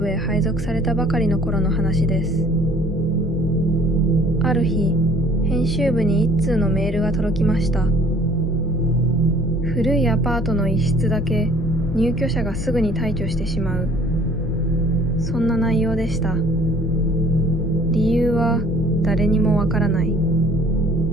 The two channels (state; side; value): noise; left; hum, 10 dB below the sound